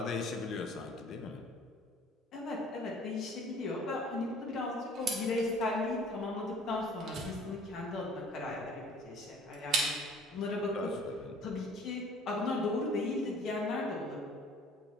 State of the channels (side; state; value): both; normal; correlation 0.51